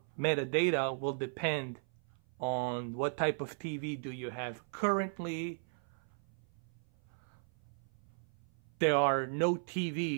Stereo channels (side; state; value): left; silent; 54 dB below the other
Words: metadata will depend on what type of TV do you have. Currently, there are no